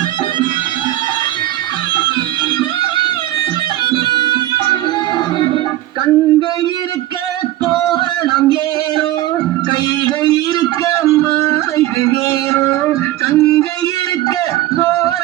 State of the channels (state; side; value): quieter; left; 15.0 dB